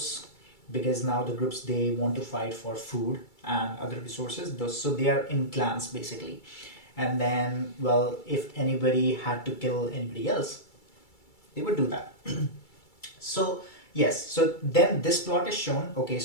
because now the groups, they want to fight for food and other resources. So they are in clans basically. And then, well, if anybody had to kill anybody else, they would do that. So yes, so then this plot is shown. Okay,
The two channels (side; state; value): right; late; 2.3 ms